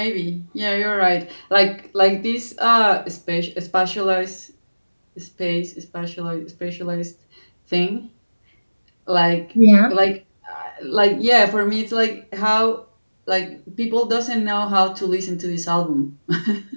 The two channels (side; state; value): both; inverted; correlation -1.00